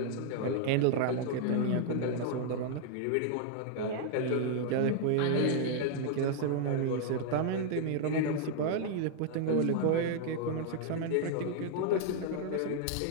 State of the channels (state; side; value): different; both; correlation -0.01